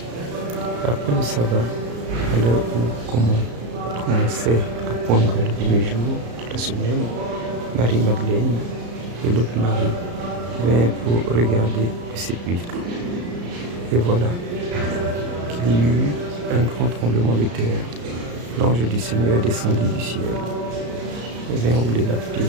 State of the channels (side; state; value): left; late; 34 ms